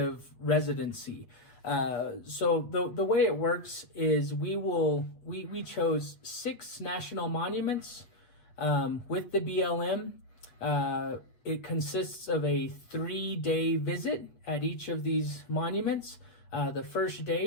residency. So the way it works is we chose 6 national monuments with the BLM. It consists of a 3-day visit at each of these monuments. The first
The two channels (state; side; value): late; right; 8.2 ms